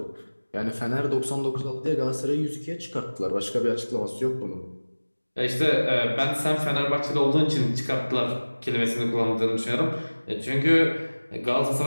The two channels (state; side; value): inverted; both; correlation -1.00